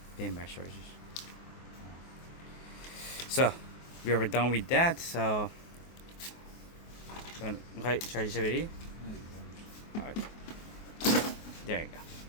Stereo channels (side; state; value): right; late; 24 ms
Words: Beam charges. So we are done with that. So charge ready. Alright. There you go.